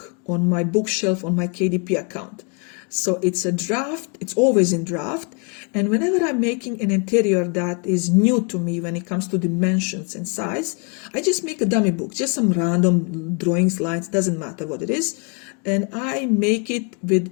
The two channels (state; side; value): quieter; right; 34.3 dB